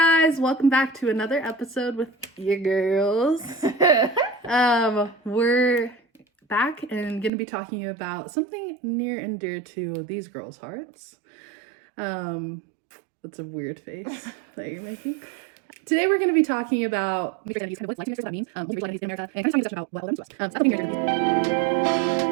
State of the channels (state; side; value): drops out; left; at 7.3 s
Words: welcome back to another episode with your girls. We're back and going to be talking about something near and dear to these girls' hearts. That's a weird face that you're making. Today we're going to be talking about identities, kind of what that means, multiracial identities in America, and kind of talking about what belongs to us. So that's